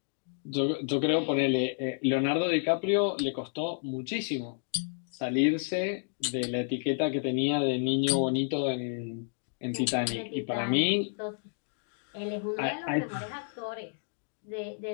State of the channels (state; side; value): silent; right; digital silence